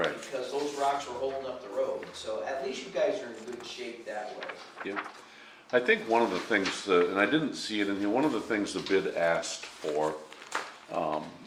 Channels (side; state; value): both; identical; correlation 1.00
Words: Because those rocks were holding up the road, so at least you guys are in good shape that way. Yep. I think one of the things, and I didn't see it in here, one of the things the bid asked for